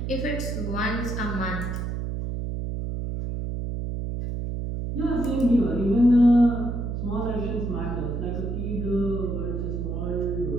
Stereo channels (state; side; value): noise; right; hum, 3 dB below the sound